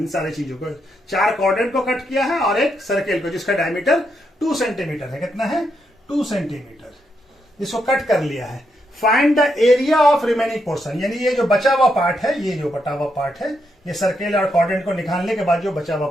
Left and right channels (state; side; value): normal; both; correlation 0.80